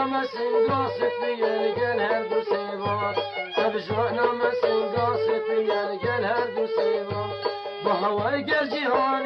مسنگا سفیر گل هر دو سیما ابجانا مسنگا سفیر گل هر دو سیما با هوای گل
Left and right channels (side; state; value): both; identical; correlation 1.00